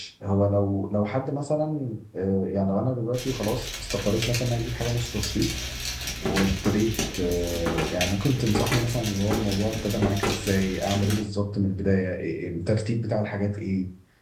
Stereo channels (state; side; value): identical; both; correlation 1.00